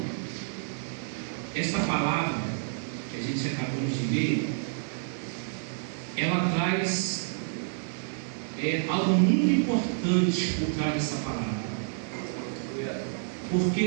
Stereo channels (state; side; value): silent; left; 59 dB below the other